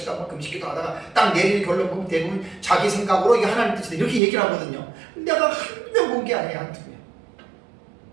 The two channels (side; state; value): left; drops out; at 4.2 s